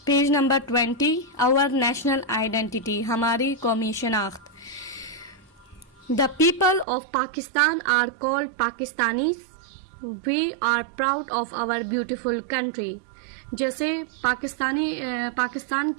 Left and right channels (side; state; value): left; drops out; at 6.9 s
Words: 20। Our national identity, हमारी कौमी शनाख्त। The people of Pakistan are called Pakistanis. We are proud of our beautiful country. जैसे पाकिस्तान